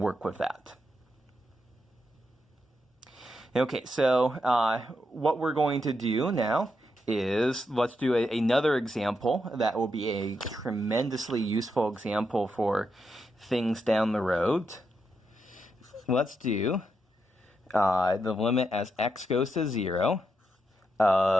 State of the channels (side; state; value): both; normal; correlation 0.83